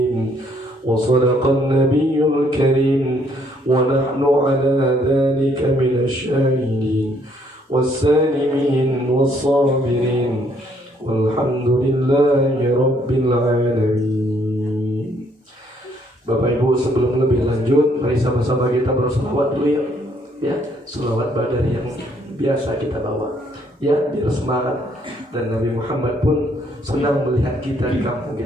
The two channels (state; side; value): normal; both; correlation 0.67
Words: وصدق النبي الكريم ونحن على ذلك من الشاهدين والسالمين والصابرين والحمد لله رب العالمين. Bapak Ibu, sebelum lebih lanjut, mari sama-sama kita berselawat dulu ya, selawat badar yang biasa kita bawa ya, biar semangat. Dan Nabi Muhammad pun senang melihat kita di kampung